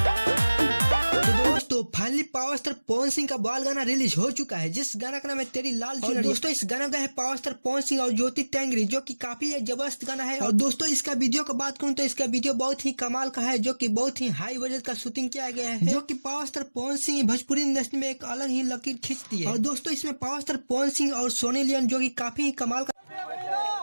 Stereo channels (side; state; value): both; inverted; correlation -1.00